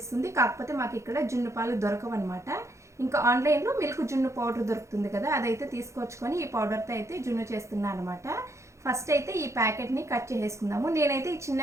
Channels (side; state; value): left; late; 0.14 ms